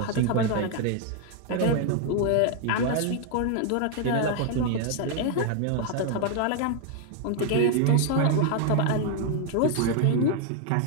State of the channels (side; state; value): both; different; correlation 0.00